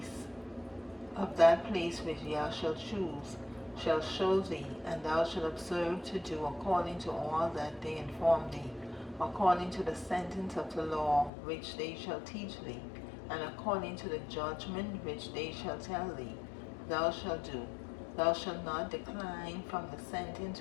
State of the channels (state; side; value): drops out; right; at 11.3 s